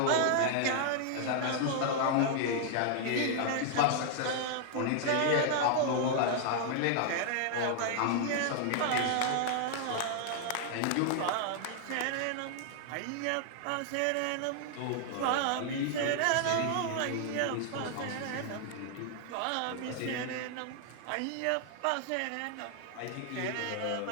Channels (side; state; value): both; different; correlation 0.00